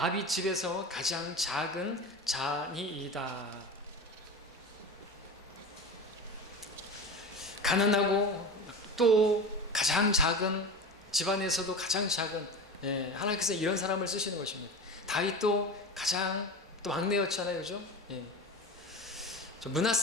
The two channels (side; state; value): both; normal; correlation 0.29